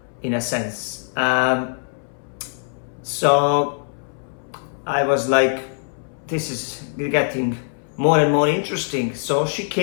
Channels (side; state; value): right; silent; 64 dB below the other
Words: in a sense. So I was like, this is getting more and more interesting. So she